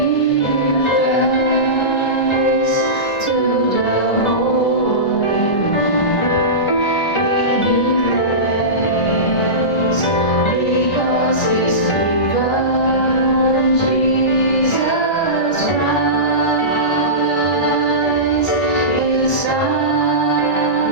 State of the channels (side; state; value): right; late; 1.2 ms